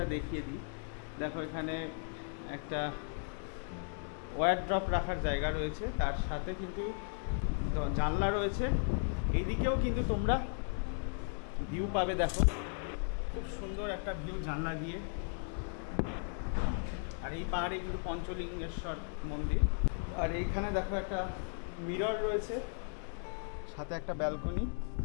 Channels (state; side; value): silent; right; 54 dB below the other